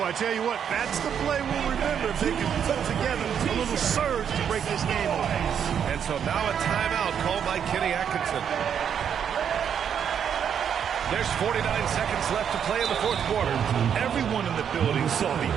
I tell you what, that's the play we'll remember if they can put together a little surge to break this game off. And so now a timeout called by Kenny Atkinson. There's 49 seconds left to play in the fourth quarter. Everyone in the building saw the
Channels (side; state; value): left; quieter; 8.2 dB